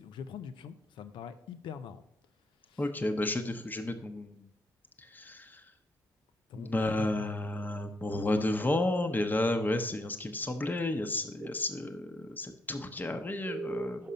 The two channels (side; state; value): both; normal; correlation 0.75